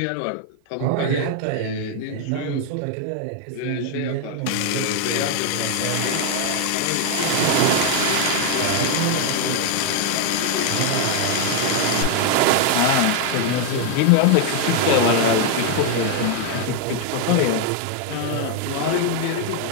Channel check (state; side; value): different; both; correlation 0.01